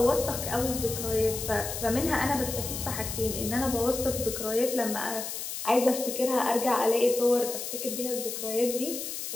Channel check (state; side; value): noise; left; hiss, 6 dB below the sound